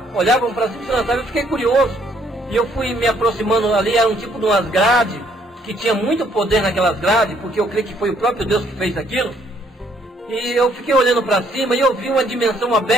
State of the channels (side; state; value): both; normal; correlation 0.66